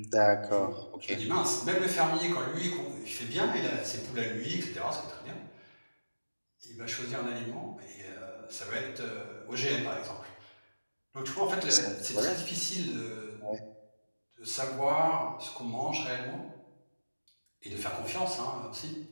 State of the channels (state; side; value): inverted; both; correlation -1.00